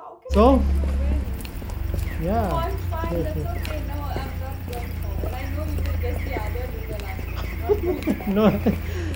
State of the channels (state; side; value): identical; both; correlation 1.00